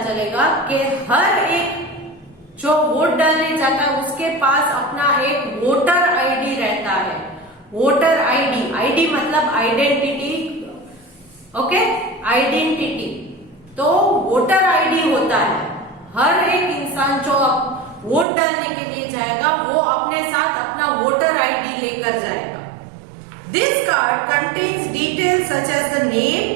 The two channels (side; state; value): left; drops out; at 18.2 s